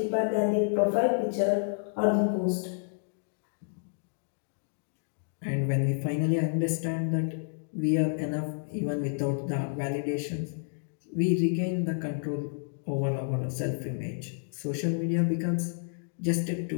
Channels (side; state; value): right; silent; digital silence